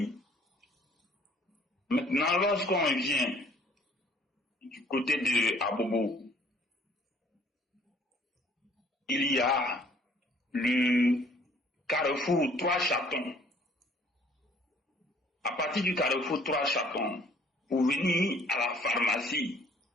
Maintenant, lorsqu'on vient du côté de Abobo, il y a le carrefour Trois Chatons. À partir du carrefour Trois Chatons, pour venir à la pharmacie,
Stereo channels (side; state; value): both; normal; correlation 0.58